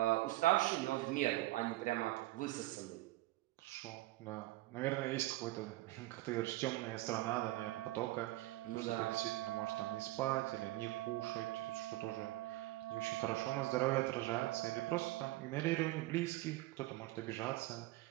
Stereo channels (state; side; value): quieter; left; 17.8 dB